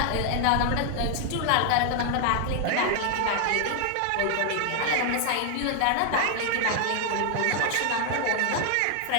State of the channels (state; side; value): different; both; correlation 0.00